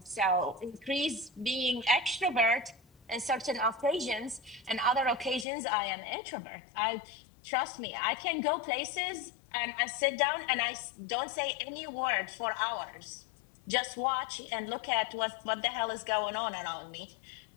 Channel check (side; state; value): right; drops out; at 5.5 s